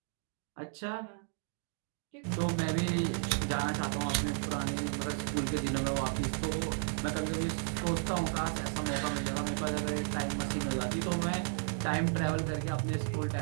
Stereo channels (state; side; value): silent; left; 55 dB below the other